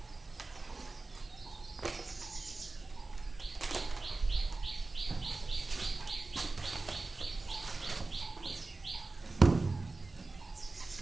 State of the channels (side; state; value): left; quieter; 3.5 dB